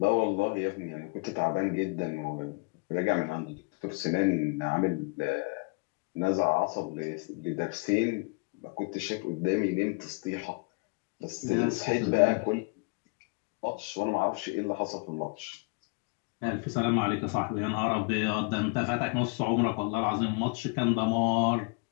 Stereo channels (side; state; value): right; quieter; 31.0 dB